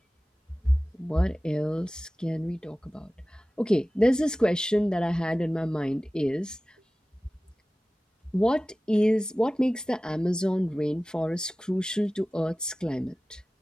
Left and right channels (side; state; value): both; normal; correlation 0.97